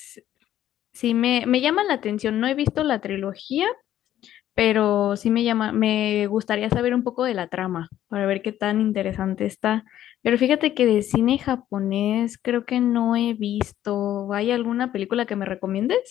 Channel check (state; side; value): quieter; right; 12.1 dB